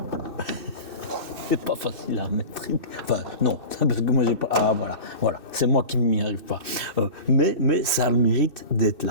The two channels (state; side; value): late; left; 2.6 ms